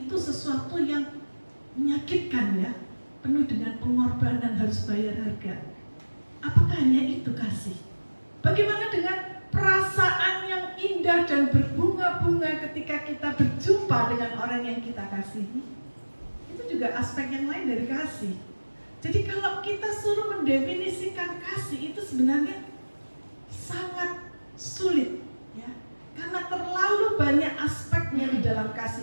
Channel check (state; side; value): inverted; both; correlation -1.00